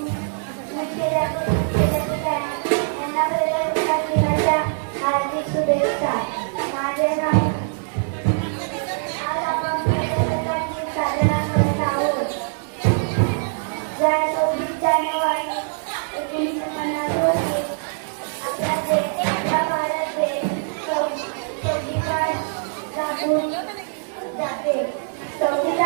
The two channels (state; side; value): silent; left; 64 dB below the other